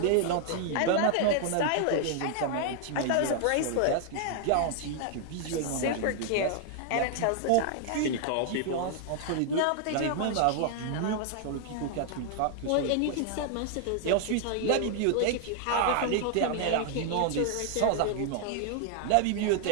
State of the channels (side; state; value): both; different; correlation 0.00